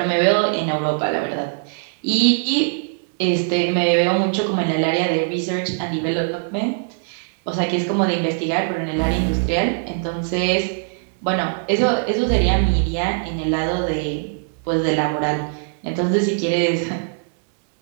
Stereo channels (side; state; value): left; silent; digital silence